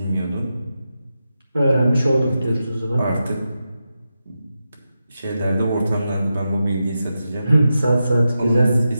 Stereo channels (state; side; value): inverted; both; correlation -0.89